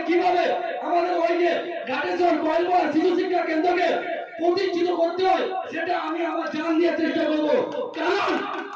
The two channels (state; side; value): identical; both; correlation 1.00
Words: কিভাবে আমাদের ওই যে ঘাটেশ্বর কয়েলপাড়া শিশু শিক্ষা কেন্দ্রকে প্রতিষ্ঠিত করতে হয় সেটা আমি আমার জান দিয়ে চেষ্টা করবো। কারণ